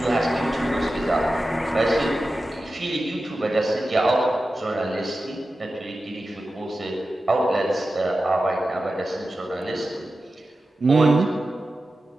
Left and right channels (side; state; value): both; normal; correlation 0.93